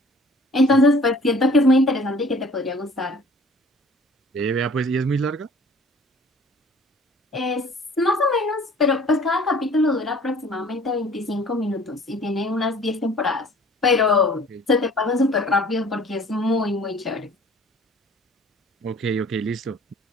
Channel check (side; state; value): both; normal; correlation 0.51